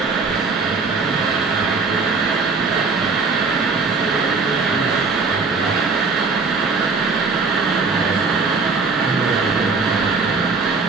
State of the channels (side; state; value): left; quieter; 4.4 dB